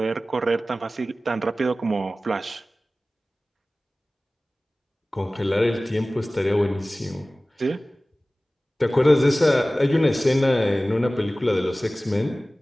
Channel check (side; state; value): both; normal; correlation 0.97